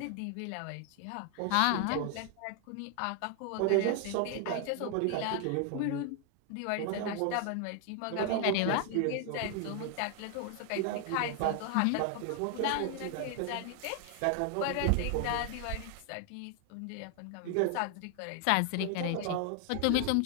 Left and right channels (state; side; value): different; both; correlation 0.00